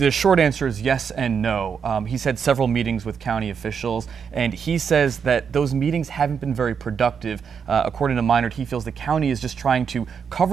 short answer is yes and no. He's had several meetings with county officials, and he says that those meetings haven't been very productive. According to Maynard, he feels the county is just trying to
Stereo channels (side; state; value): left; quieter; 6.7 dB